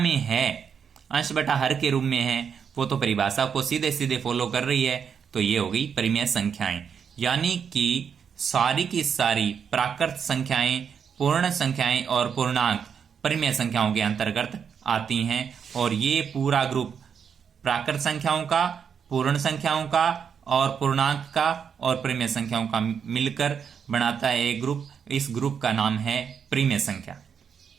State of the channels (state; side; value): quieter; left; 7.1 dB